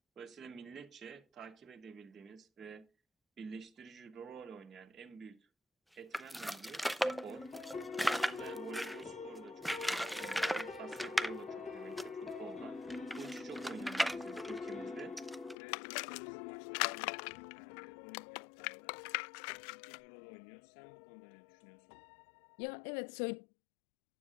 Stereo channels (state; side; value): drops out; right; at 15.6 s